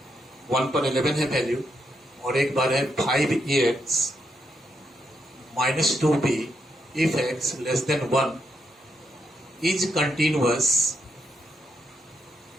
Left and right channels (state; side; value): normal; both; correlation 0.80